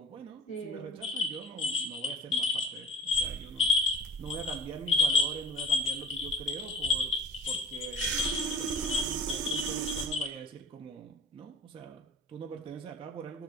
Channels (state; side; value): normal; both; correlation 0.44